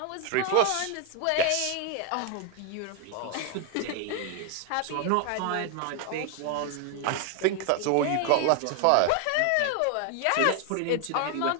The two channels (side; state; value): both; different; correlation 0.00